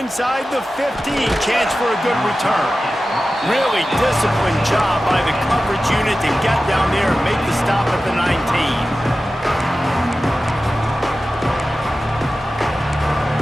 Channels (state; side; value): normal; both; correlation 0.94